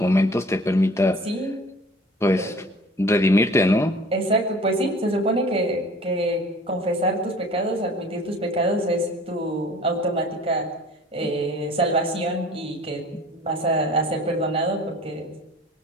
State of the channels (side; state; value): both; normal; correlation 0.46